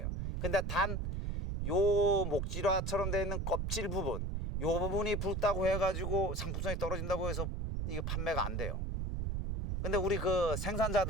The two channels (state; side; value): noise; right; rumble, 2 dB below the sound